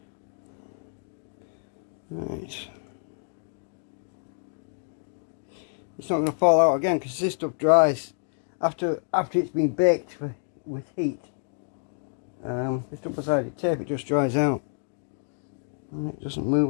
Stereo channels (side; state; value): right; silent; digital silence